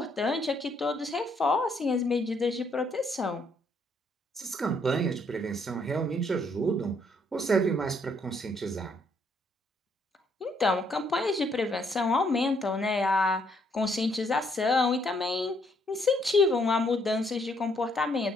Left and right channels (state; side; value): normal; both; correlation 0.70